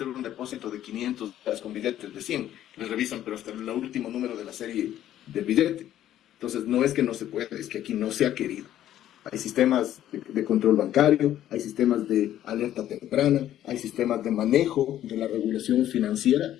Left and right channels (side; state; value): right; quieter; 12.1 dB